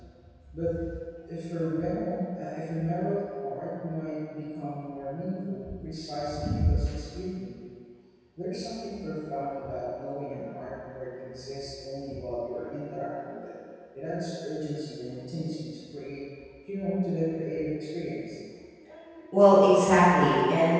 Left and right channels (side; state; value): both; identical; correlation 1.00